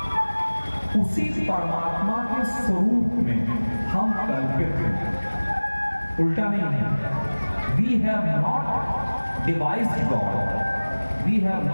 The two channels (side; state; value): both; inverted; correlation -1.00